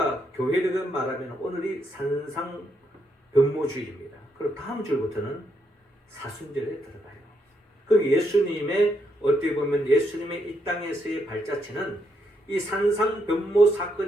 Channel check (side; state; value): both; normal; correlation 0.77